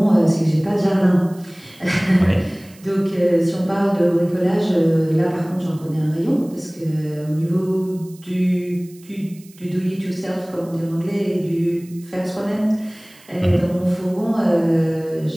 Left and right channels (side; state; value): right; noise; hiss, 25 dB below the sound